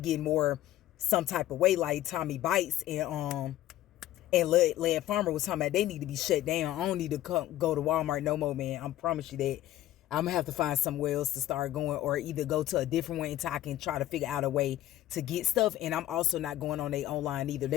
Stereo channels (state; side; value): quieter; right; 14.0 dB